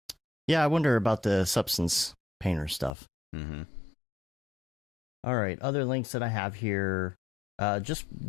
yeah, I wonder about the substance painter stuff. Mm-hmm. All right, other links that I have here. Just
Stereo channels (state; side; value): drops out; right; at 2.9 s